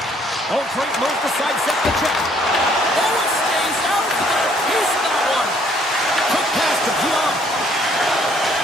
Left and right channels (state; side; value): normal; both; correlation 0.64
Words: Oh, great move to sidestep the check. Oh, it stays out. Got a piece of that one. Quick pass to Pion.